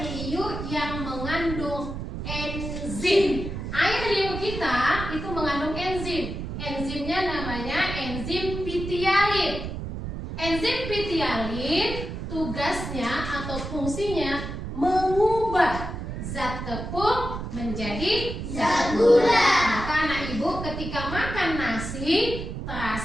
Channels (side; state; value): right; noise; rumble, 6 dB below the sound